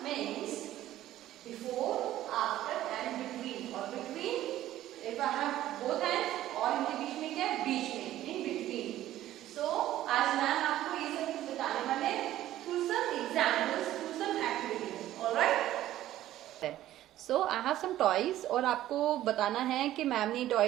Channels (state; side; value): quieter; left; 13.6 dB